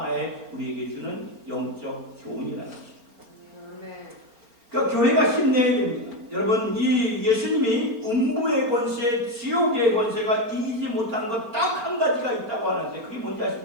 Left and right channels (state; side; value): late; left; 4.4 ms